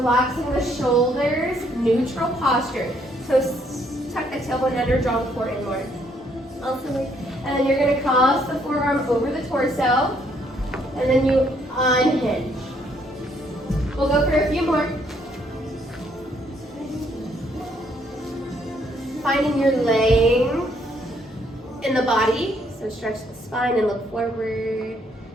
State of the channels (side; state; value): both; normal; correlation 0.69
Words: the shoulders, neutral posture. So tuck the tailbone under, draw the core inward. And then you're gonna cross the forearm over the torso and then you unhinge. We'll go for a few more. Finding your length in the body. So stretch the spine and look forward.